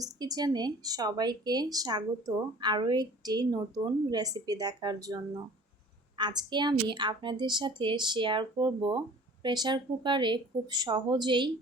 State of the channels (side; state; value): both; normal; correlation 0.47